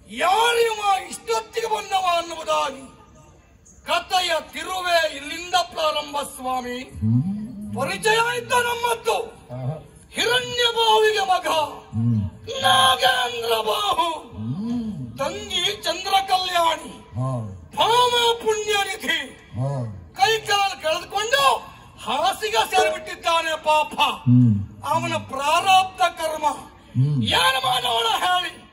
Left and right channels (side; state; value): both; identical; correlation 1.00